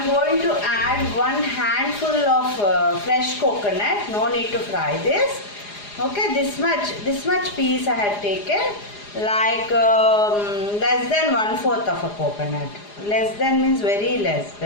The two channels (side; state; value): right; late; 4.9 ms